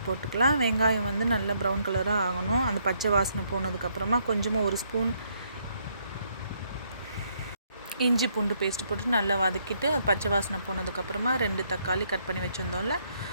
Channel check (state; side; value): inverted; both; correlation -0.72